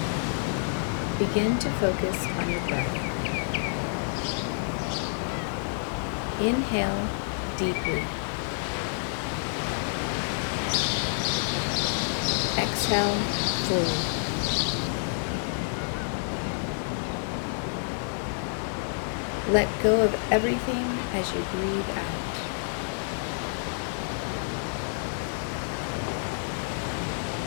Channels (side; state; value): right; silent; digital silence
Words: Begin to focus on your breath. Inhale deeply. Exhale fully. Let go of everything as you breathe out.